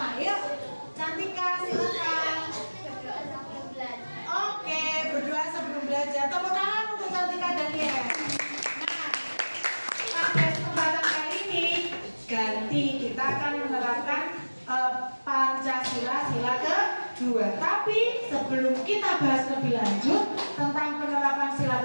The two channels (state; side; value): inverted; both; correlation -1.00